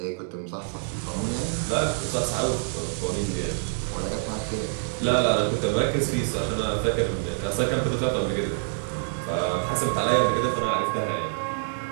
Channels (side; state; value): left; silent; 61 dB below the other